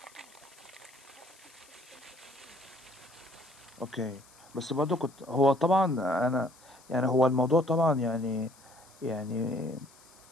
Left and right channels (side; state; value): left; noise; hiss, 25 dB below the sound